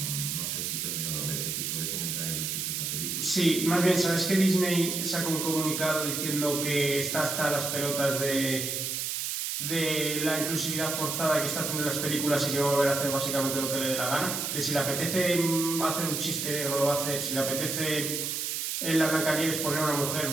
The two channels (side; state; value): right; noise; hiss, 2 dB below the sound